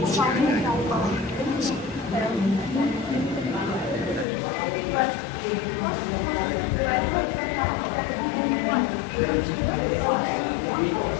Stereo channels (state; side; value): drops out; right; at 4.2 s